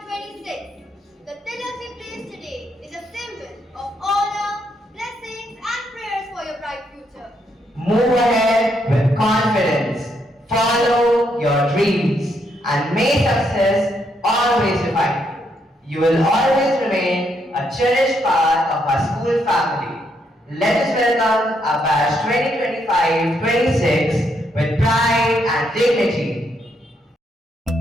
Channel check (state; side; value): normal; both; correlation 0.76